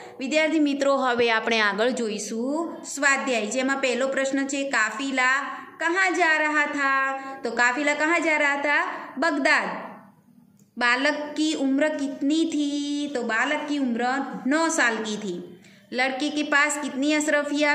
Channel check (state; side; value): identical; both; correlation 1.00